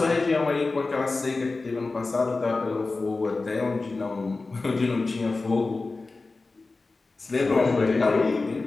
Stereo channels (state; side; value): quieter; right; 3.6 dB